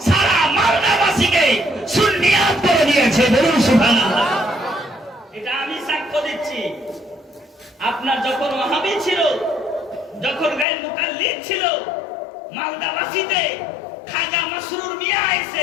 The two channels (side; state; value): right; drops out; at 10.7 s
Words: সারা মালদাবাসীকে সুন্নিয়াত করে দিয়েছে। বলুন সুবহানাল্লাহ। এটা আমি সাক্ষ্য দিচ্ছি। আপনার যখন ওয়াহাবি ছিল, যখন গায়ের মুকাল্লিদ ছিল, মালদাবাসীতে খাজা মাসরুর মিয়া